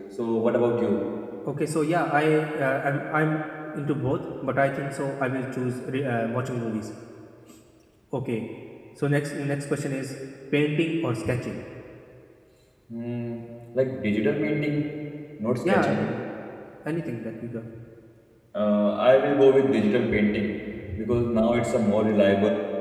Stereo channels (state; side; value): identical; both; correlation 1.00